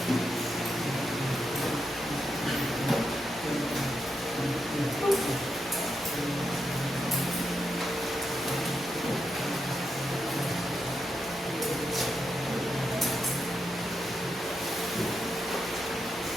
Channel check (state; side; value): normal; both; correlation 0.85